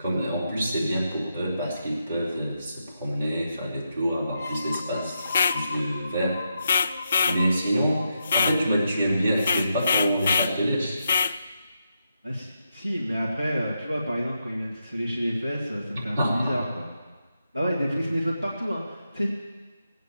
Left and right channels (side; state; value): both; inverted; correlation -0.84